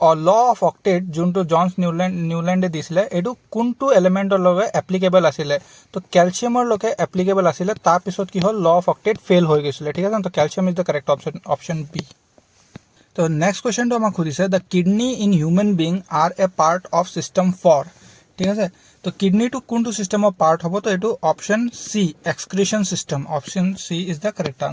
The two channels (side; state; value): both; identical; correlation 1.00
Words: लॉ ऑफ ऑक्टेट जोंटो जॉन्स न्यूलैंडे दिसिले एडु कोनटो एलिमेंटर लगे एप्लीकेबल आसिले तो कैल्शियमर लगे एप्लीकेबल आसिले तार पिছত की हल लॉ ऑफ ऑक्टेट फेल हो गयसिले ठीक है तो calcium is the correct option B तो नेक्स्ट क्वेश्चन तो हमक खुदिसे the kidney in human being are a part of system 4 ठीक है तो किडनी टू कोनटो सिस्टम ऑफ पार्ट हबो तो एटु option C excretion system option C is the correct